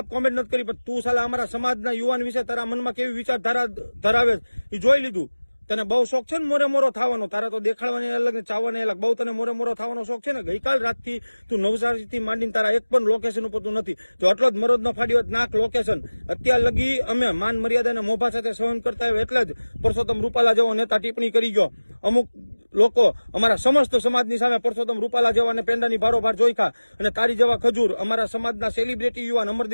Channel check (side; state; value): both; inverted; correlation -1.00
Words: કોમેન્ટ નથી કરી, પણ તું સાલા અમારા સમાજના યુવાન વિશે તારા મનમાં કેવી વિચારધારા ધરાવે એ જોઈ લીધું. તને બહુ શોખ છે ને મોરે મોરો થવાનો, તારા તો દેખાડવાની અલગ ને ચાવવાની અલગ. બહુ તને મોરે મોરો થવાનો શોખ છે ને. ગઈકાલ રાતથી તું નવસારીથી માંડીને તારા એક પણ લોકેશન ઉપર તું નથી. જો આટલો જ મરોજ નો ફાડ્યો નાખ લોકેશન. અત્યાર લગી અમે માન મર્યાદાને મોભા સાથે સહન કરતા હોય એટલે જ પરસોત્તમ રૂપાલા જેવો નેતા ટિપ્પણી કરી ગયો. અમુક લોકો અમારા સમસ્ત સમાજની સામે પરસોત્તમ રૂપાલા જેવા પેંડાની ભારોભાર જોઈખા, અને તારી જેવા ખજૂર અમારા સમાજના સેલિબ્રિટી યુવાન